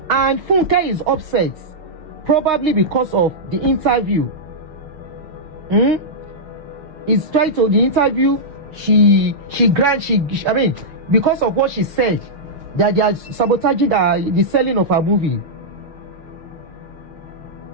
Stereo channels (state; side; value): late; left; 6.5 ms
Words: And Funke is upset, probably because of the interview. It's trying to, the interview, because of what she said, that they are sabotaging the selling of her movie.